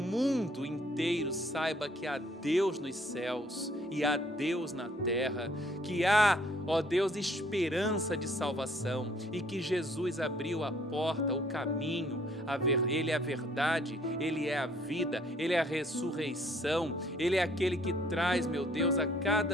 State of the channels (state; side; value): normal; both; correlation 0.62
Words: inteiro saiba que há Deus nos céus e há Deus na terra, que há, ó Deus, esperança de salvação e que Jesus abriu a porta, o caminho, Ele é a verdade, Ele é a vida, Ele é a ressurreição, Ele é aquele que traz, meu Deus, a